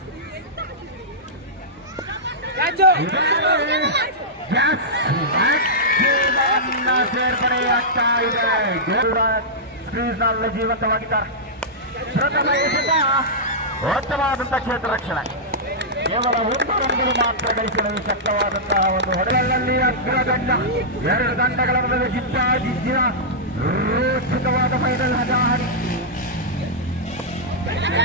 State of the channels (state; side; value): normal; both; correlation -0.12